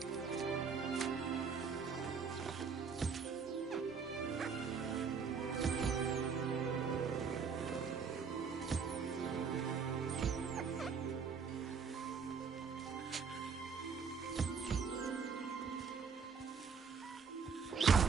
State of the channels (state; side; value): quieter; left; 5.8 dB